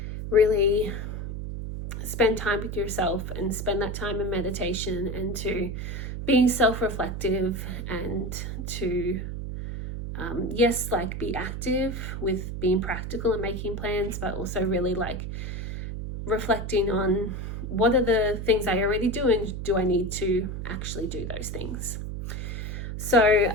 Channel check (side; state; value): right; noise; hum, 5 dB below the sound